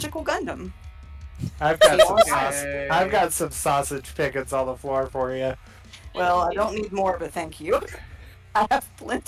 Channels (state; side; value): identical; both; correlation 1.00